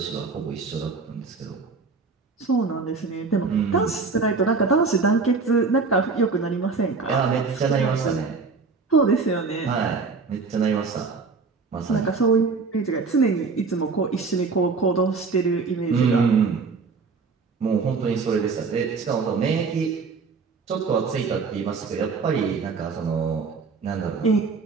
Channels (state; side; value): quieter; left; 4.6 dB